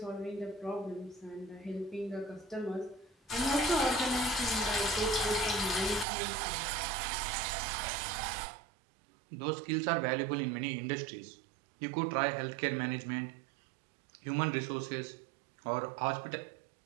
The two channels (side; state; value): left; drops out; at 6.1 s